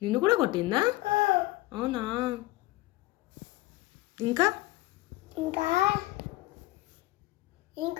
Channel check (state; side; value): quieter; right; 18.7 dB